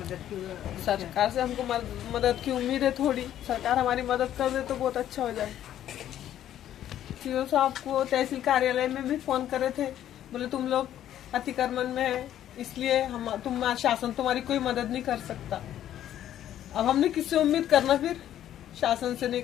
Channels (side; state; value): right; quieter; 11.5 dB